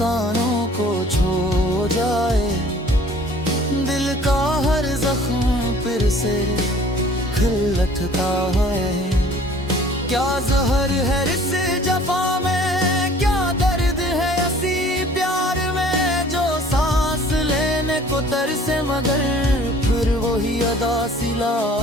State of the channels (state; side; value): normal; both; correlation 0.52